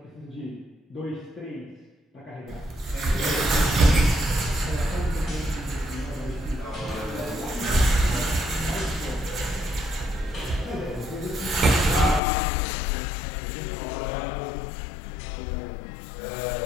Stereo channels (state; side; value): drops out; right; at 12.2 s